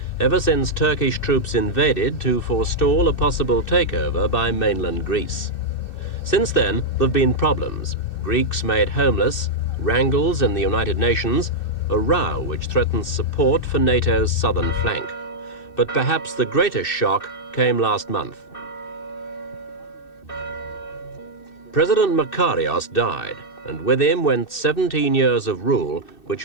ever since Turkish troops invaded to forestall a possible takeover by mainland Greece. Since then, there have been problems. Greeks made homeless, wrangles in the United Nations, a row which threatens support for NATO's southern flank. But perhaps the greatest shock came last month. President Makarios died, and with him went 17 years of rule,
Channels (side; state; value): right; late; 2.6 ms